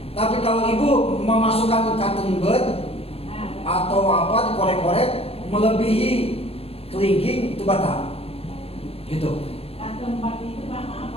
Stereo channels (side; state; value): right; late; 0.28 ms